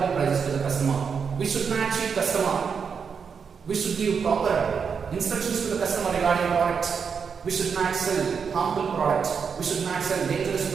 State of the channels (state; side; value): quieter; left; 6.2 dB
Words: prices to the customer. We should not cheat customer. We should give proper instructions to the customer regarding product. We should not sell harmful product. We should not sell dangerous